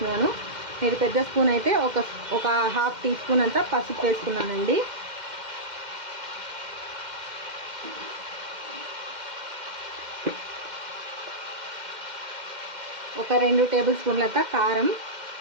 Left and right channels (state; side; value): late; left; 2.1 ms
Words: మీరు పెద్ద స్పూన్ అయితే ఒక 1/2 టీ స్పూన్ అంతా పసుపు వేసుకున్నానండి. ఒక 2 టేబుల్ స్పూన్లంతా కారం.